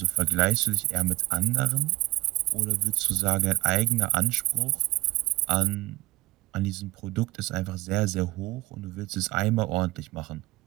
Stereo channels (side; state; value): left; quieter; 20.2 dB